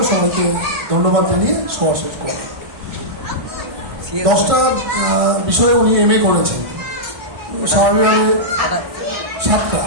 সবাইকে ধন্যবাদ জানিয়ে সভা শেষ করেন। 10টা বিষয়ে উনি MA করেছেন, স্বাভাবিকভাবে 7টা।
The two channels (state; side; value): late; left; 1.6 ms